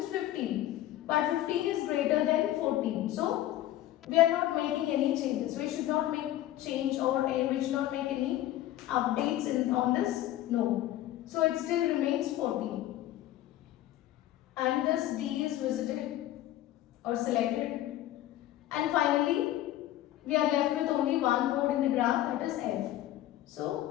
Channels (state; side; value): quieter; right; 13.9 dB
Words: 15. But 15 is greater than 14. So we are not making any changes. We should not make change, or we should not make any updates on this node. So it still remains 14. And this D is visited or selected. And finally, we are left with only one node in the graph, that is F.